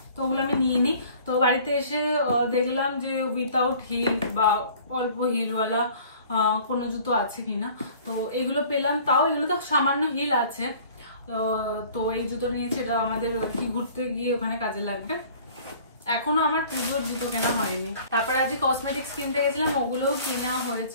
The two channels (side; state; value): both; inverted; correlation -0.50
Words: তো ওগুলো আমি নিয়ে নিই। তো বাড়িতে এসে দেখলাম যে উইথাউট হিল বা অল্প হিলওয়ালা কোনো জুতো আছে কিনা, তো এগুলো পেলাম। তাও এগুলো তো সামান্য হিল আছে, তো এই জুতো নিয়েছি, এটা আমাদের কি ঘুরতে গিয়ে ওখানে কাজে লাগবে। এখনো আমার পুজোর জুতো কেনা হয়নি। তারপরে আজকে কসমেটিক্স কিনতে গেছিলাম, ওগুলোও কেনা হয়েছে,